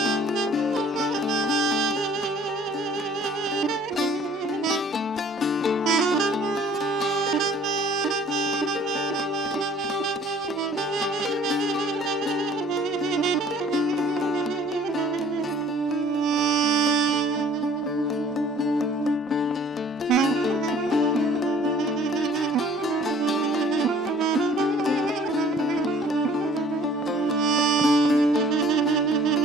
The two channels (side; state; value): both; normal; correlation 0.53